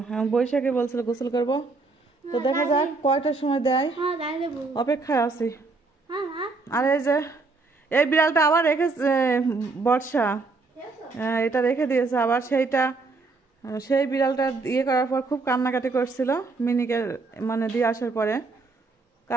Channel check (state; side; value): quieter; left; 3.9 dB